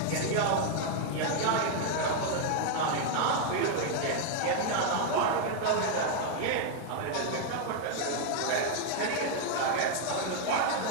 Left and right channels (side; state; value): both; different; correlation 0.00